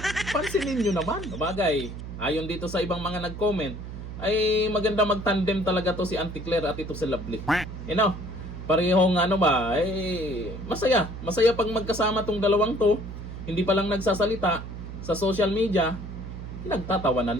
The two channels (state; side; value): noise; right; hum, 10 dB below the sound